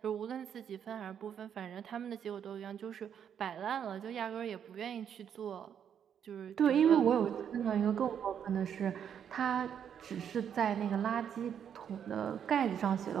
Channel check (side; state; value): left; quieter; 8.5 dB